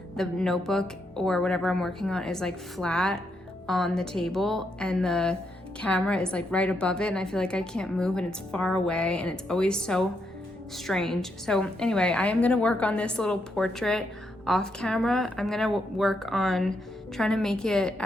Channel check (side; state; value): both; normal; correlation 0.79